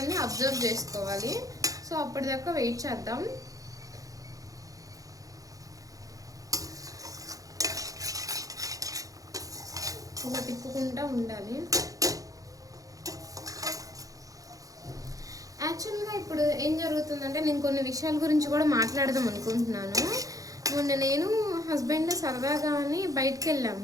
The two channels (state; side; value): late; left; 0.17 ms